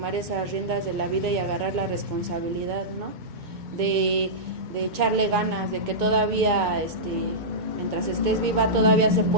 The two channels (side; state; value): left; late; 2.2 ms